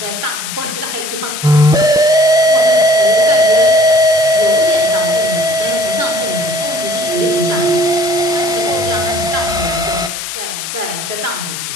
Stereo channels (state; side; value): noise; left; hiss, 7 dB below the sound